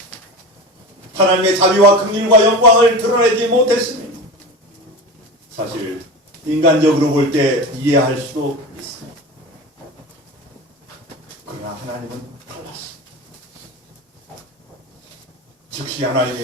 하나님의 자비와 긍휼과 영광을 드러내지 못했습니다. 사실 인간적으로 볼 때 이해할 수도 있습니다. 그러나 하나님은 달랐습니다. 즉시 하나님이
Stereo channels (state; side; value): normal; both; correlation 0.28